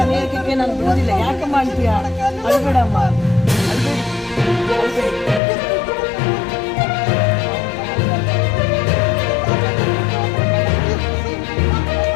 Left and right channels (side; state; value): right; drops out; at 5.4 s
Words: ಅನ್ಯಾಯಕ್ಕೆ ನಾನು ಬಿಡೋದಿಲ್ಲ. ಯಾಕಮ್ಮ ಅಂತೀಯ? ಅಳಬೇಡಮ್ಮ, ಅಳಬೇಡಿ, ಅಳಬೇಡಿ.